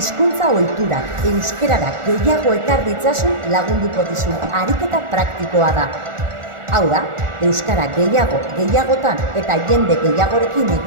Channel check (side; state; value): left; late; 1.4 ms